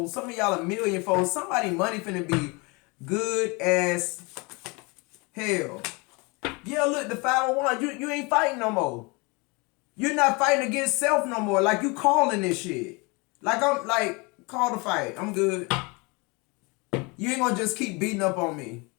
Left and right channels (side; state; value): right; quieter; 28.2 dB